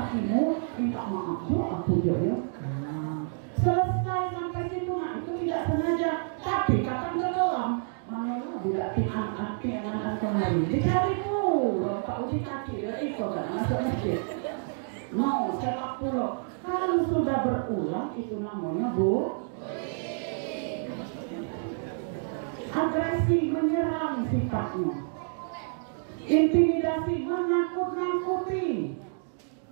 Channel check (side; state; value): left; silent; digital silence